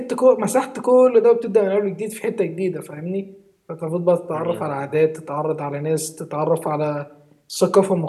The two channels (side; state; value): both; identical; correlation 1.00